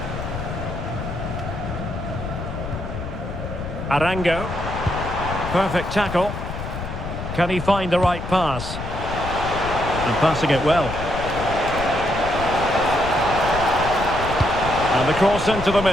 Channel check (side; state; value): left; noise; rumble, 7 dB below the sound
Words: Arango. Perfect tackle. Can he find the right pass? And passing it well. And the cross into the